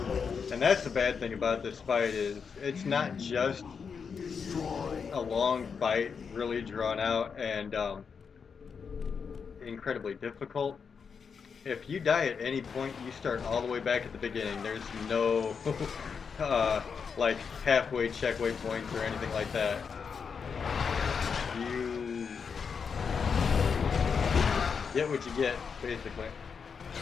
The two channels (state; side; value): quieter; right; 6.0 dB